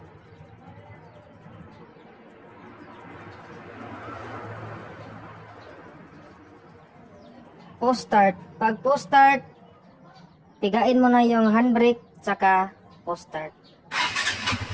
Post start. Pag post start, pigain mo na yung handbrake saka post start.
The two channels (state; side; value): identical; both; correlation 1.00